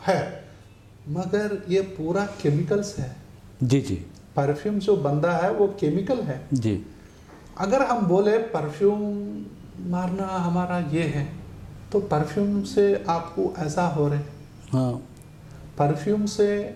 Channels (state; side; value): identical; both; correlation 1.00